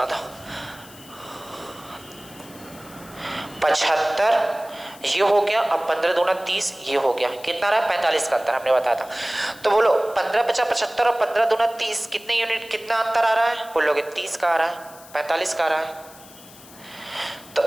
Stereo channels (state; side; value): noise; left; hiss, 20 dB below the sound